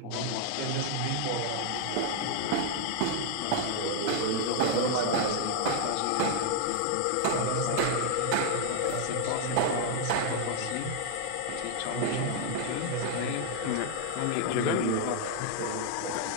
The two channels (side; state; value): both; different; correlation 0.00